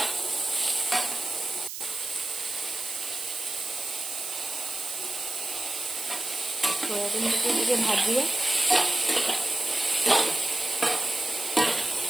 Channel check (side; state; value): right; noise; hiss, 7 dB below the sound